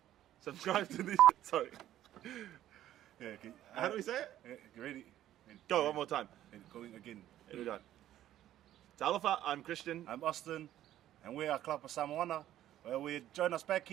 Subscribe to this, sorry. Yeah, okay. How do we say it? You ready? Go, one more time. Going again. Here we go. Talofa, I'm Christian. I'm Austin, and we are Klapa Samoana. Well, we join us back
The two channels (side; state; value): left; quieter; 12.6 dB